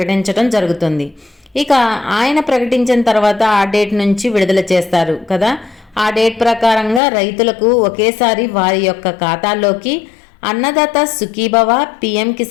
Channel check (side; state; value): right; drops out; at 7.0 s